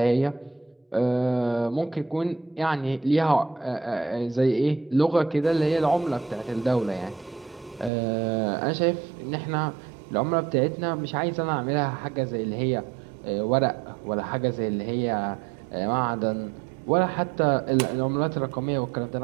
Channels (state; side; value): drops out; left; at 7.9 s